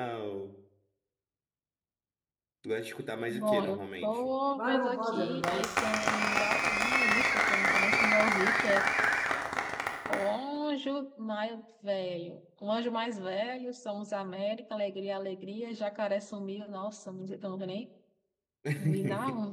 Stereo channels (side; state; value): both; identical; correlation 1.00